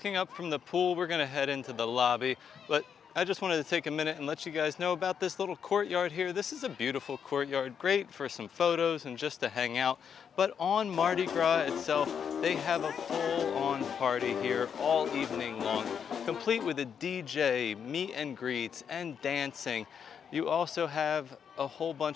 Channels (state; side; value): quieter; right; 7.5 dB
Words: up from the pool, we're gonna head into the lobby, but I just wanted to take a minute and let you guys know about this little courtyard here. This is a beautiful courtyard, great for some photos and just to hang out. But on Mardi Gras itself, they have a full-on party here all evening long, complete with a DJ, meet and greets, and dancing. You also have a whole